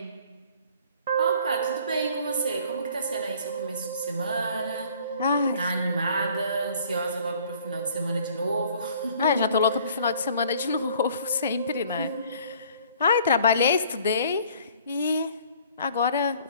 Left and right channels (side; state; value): both; inverted; correlation -0.55